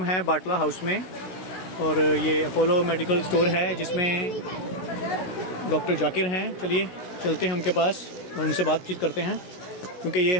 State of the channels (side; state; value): right; late; 16 ms